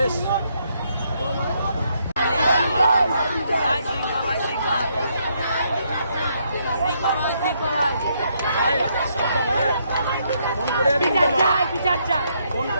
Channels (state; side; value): inverted; both; correlation -0.74